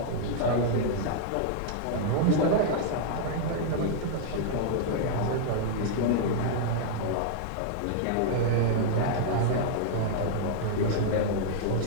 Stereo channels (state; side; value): different; both; correlation -0.01